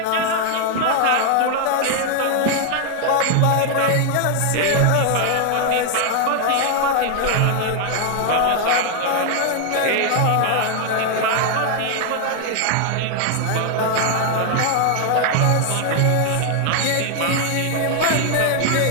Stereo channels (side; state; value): both; different; correlation 0.00